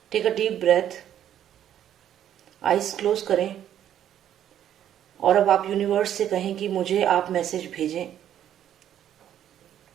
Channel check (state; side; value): quieter; left; 10.6 dB